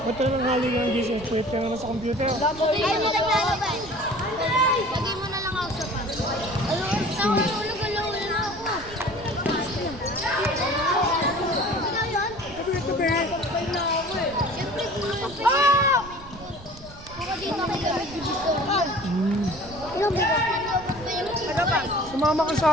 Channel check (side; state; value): right; noise; rumble, 18 dB below the sound